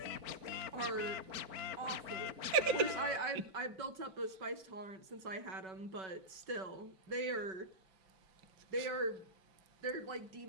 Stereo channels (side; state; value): left; late; 5.3 ms